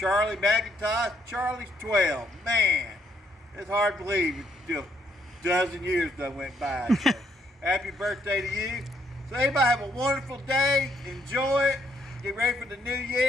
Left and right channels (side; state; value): both; normal; correlation 0.71